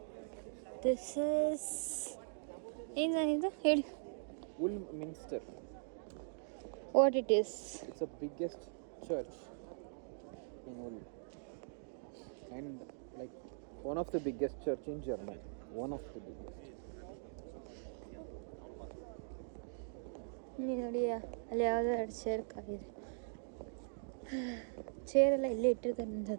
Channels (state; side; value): silent; left; digital silence